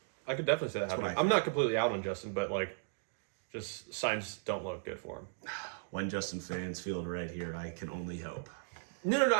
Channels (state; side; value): silent; left; digital silence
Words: I could definitely say that happening. I'm not completely out on Justin, but like, just signs don't look good for him. When Justin fans feel right here, I can only hope.